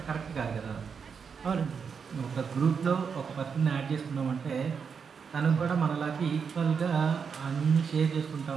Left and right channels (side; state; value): left; quieter; 6.2 dB